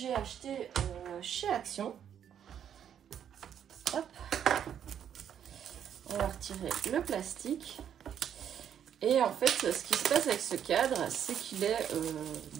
acheté chez Action. Hop, on va retirer le plastique. Et en fait ce qui se passe avec ce cadre, c'est qu'il est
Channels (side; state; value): left; quieter; 9.1 dB